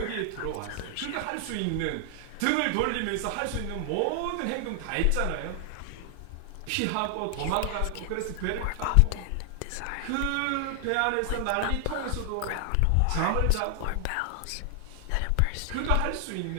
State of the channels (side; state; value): both; different; correlation 0.00